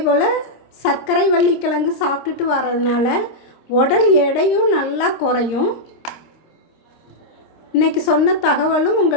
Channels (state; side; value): late; right; 26 ms